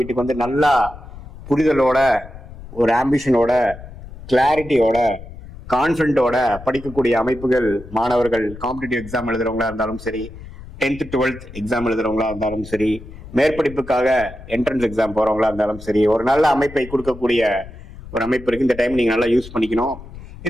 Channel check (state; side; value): noise; left; rumble, 15 dB below the sound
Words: நல்லா புரிதலோட, ஒரு ஆம்பிஷனோட, கிளாரிட்டியோட, கான்ஃபிடென்ட்டோட படிக்கக்கூடிய அமைப்புகள் மாணவர்கள் காம்படிட்டிவ் எக்ஸாம் எழுதுறவங்களா இருந்தாலும் சரி, 10th 12th எக்ஸாம் எழுதுறவங்களா இருந்தாலும் சரி, மேற்படிப்புக்காக என்ட்ரன்ஸ் எக்ஸாம் போறவங்களா இருந்தாலும் சரி, ஒரு நல்ல அமைப்பை கொடுக்கக்கூடிய ஒரு அமைப்பு இருக்கு. இந்த டைம் நீங்க நல்லா யூஸ் பண்ணிக்கணும்.